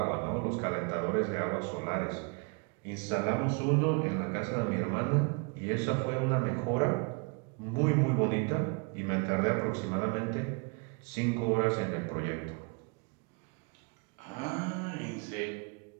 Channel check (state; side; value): quieter; left; 33.3 dB